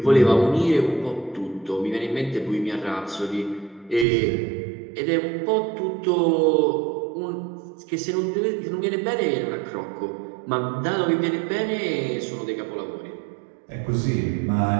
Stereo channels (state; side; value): drops out; left; at 4.0 s